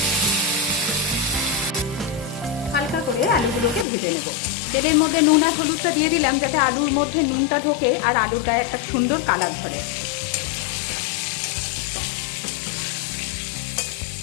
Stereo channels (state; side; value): drops out; right; at 3.9 s